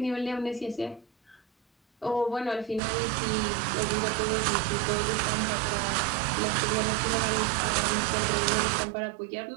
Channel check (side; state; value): left; drops out; at 2.8 s